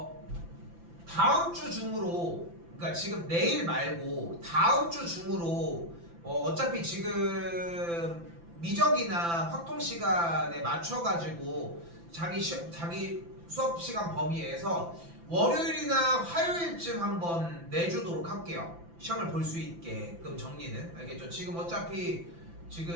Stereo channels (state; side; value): late; left; 5.9 ms